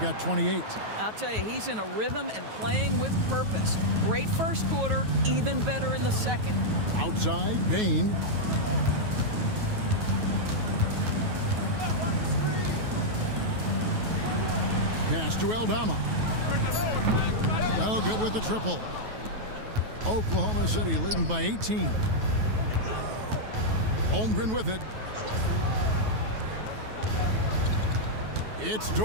28. I'll tell you, he's in a rhythm and playing with purpose. Great first quarter, even better in the second. Outside, Bain. Pass to Aldama. Oh, good with the triple. Oklahoma City leading by 18. Holmgren with it. It's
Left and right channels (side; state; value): left; late; 9.3 ms